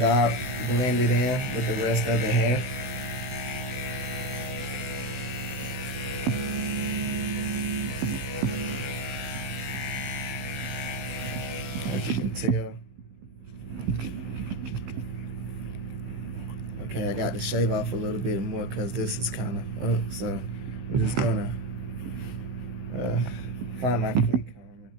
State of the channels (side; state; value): left; late; 16 ms